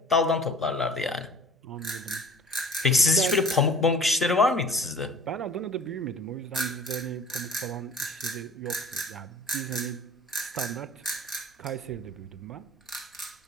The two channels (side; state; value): both; normal; correlation 0.46